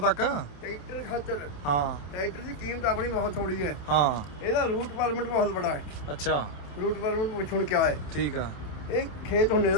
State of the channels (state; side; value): late; right; 27 ms